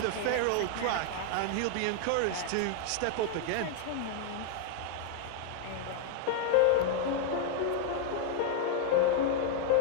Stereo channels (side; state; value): both; different; correlation 0.00